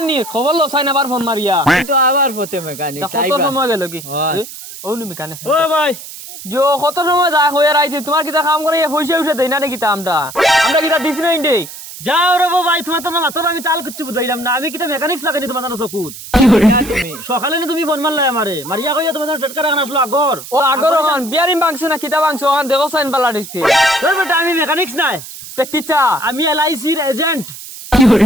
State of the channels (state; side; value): noise; right; hiss, 13 dB below the sound